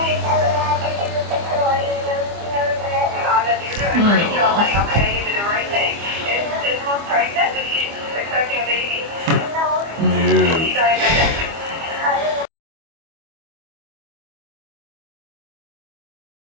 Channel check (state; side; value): late; left; 25 ms